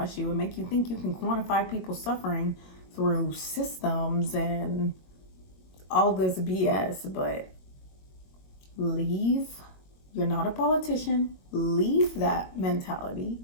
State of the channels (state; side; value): late; right; 22 ms